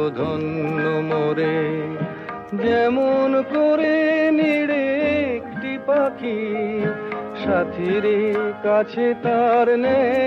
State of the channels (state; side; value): identical; both; correlation 1.00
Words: ধন্য মোরে। যেমন করে নিড়ে একটি পাখি, সাথীর কাছে তার